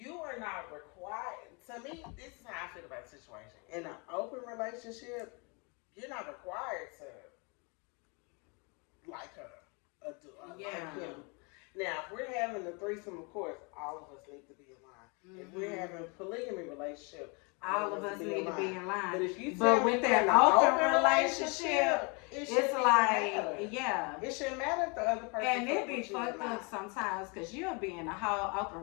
are not required, to me, this is how I feel about the situation. In an open relationship, you're not required to like her or like him. Now, if we're having a threesome, of course, all of us need to be in line. If we're having a polygamy relationship, all of us need to be in line. But if you But tell me with you're that in an open relationship, it it's shouldn't even like, matter. yeah. It shouldn't matter if the other person And it fuck be with you or fucked not. up sometimes because you'll be in a whole open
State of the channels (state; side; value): quieter; right; 32.0 dB